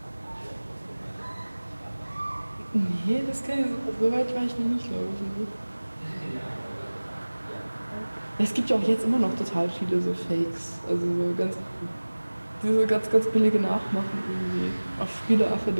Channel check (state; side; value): inverted; both; correlation -1.00